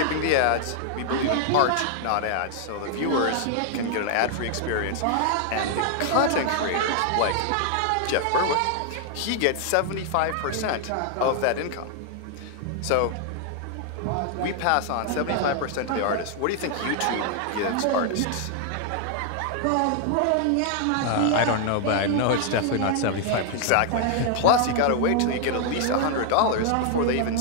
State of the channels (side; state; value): both; different; correlation 0.00